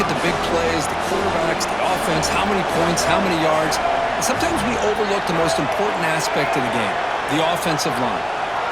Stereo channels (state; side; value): identical; both; correlation 1.00